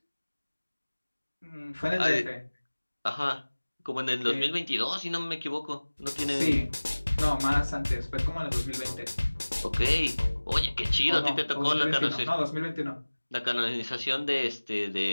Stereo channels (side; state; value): both; inverted; correlation -1.00